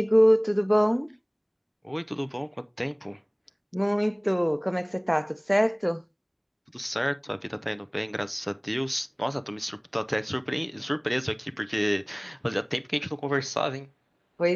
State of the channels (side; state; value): both; identical; correlation 1.00